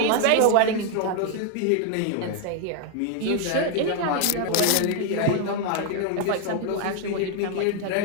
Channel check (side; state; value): both; different; correlation 0.00